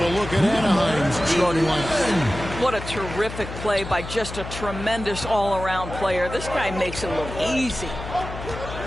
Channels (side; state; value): left; noise; hum, 9 dB below the sound